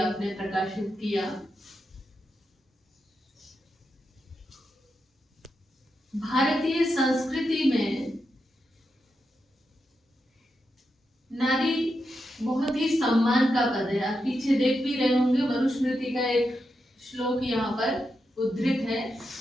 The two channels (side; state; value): both; normal; correlation 0.86